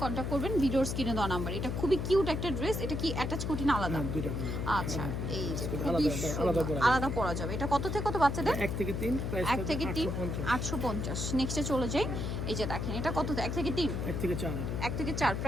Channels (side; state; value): left; noise; hum, 2 dB below the sound